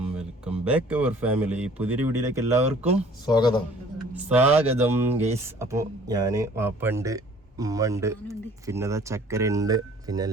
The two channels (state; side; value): normal; both; correlation 0.53